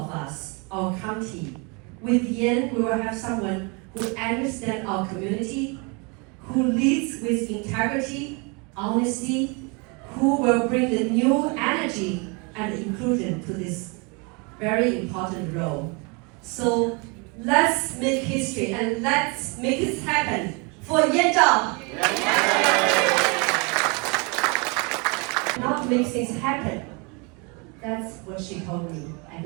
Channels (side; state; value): left; quieter; 31.4 dB